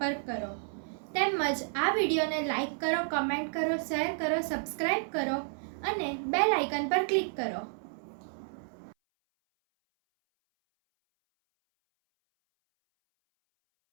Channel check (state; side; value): silent; left; 57 dB below the other